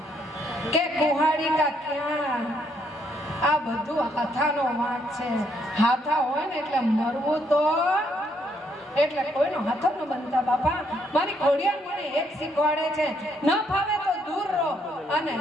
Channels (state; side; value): normal; both; correlation 0.72